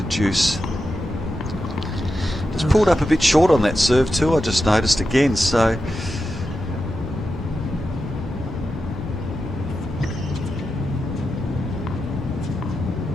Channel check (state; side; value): normal; both; correlation 0.89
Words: Juice. Just pulled up a bit short on that serve too, I just noticed again, so